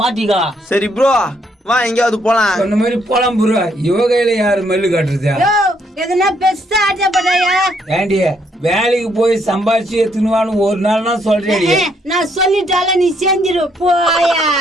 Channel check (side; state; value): both; normal; correlation 0.71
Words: மாட்டிக்கா. சரி ப்ரோ வா எங்கயாவது போலாம். அந்த மாதிரி போலாம் ப்ரோ. இவ கையில யாரு மல்லு காட்டுறதா? யோ எதனா பெருசா ஆட்டப்படாயா? ஏண்டி வேலைக்கு போய் சம்பாதிச்சு எடுத்துனுவான்னு ஒரு நாள் நான் சொல்றேன். நான் சொல்லிட்டால நீ செஞ்சிரு போயா.